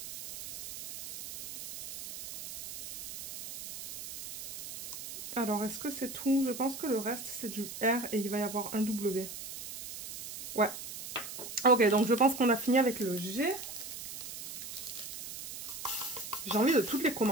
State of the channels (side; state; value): right; noise; hiss, 10 dB below the sound